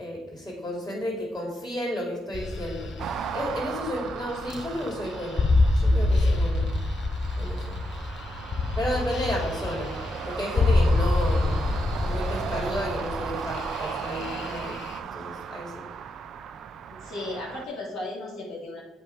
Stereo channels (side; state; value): both; normal; correlation 0.83